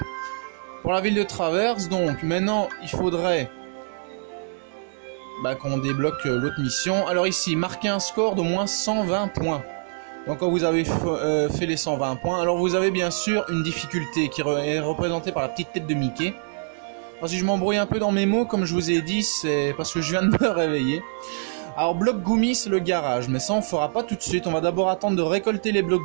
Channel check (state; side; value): silent; left; digital silence